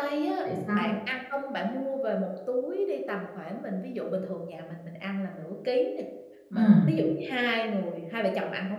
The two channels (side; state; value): both; identical; correlation 1.00